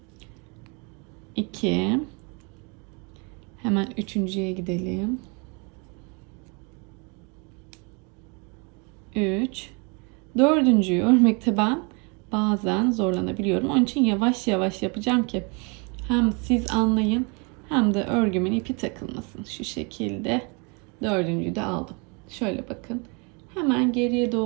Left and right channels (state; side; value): quieter; left; 32.5 dB